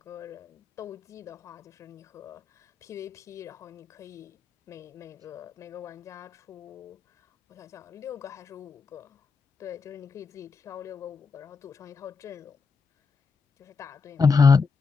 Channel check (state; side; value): quieter; right; 5.0 dB